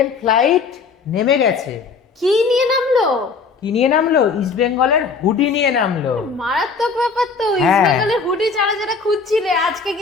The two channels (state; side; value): quieter; right; 4.9 dB